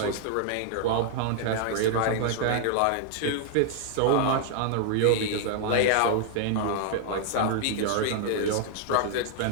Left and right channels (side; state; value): both; different; correlation 0.00